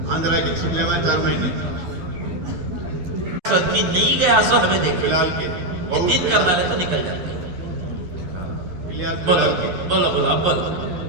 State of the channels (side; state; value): left; late; 11 ms